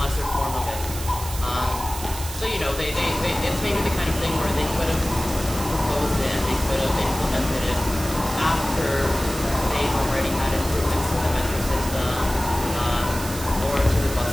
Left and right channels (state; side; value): noise; right; hiss, 10 dB below the sound